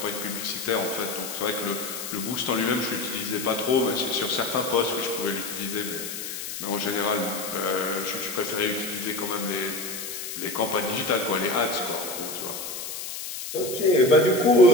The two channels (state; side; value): noise; left; hiss, 7 dB below the sound